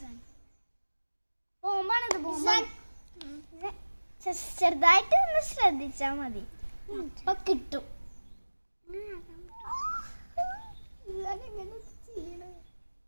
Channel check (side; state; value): both; inverted; correlation -1.00